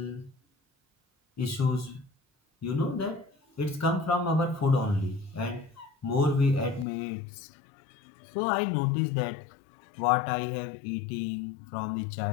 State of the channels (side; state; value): right; drops out; at 6.9 s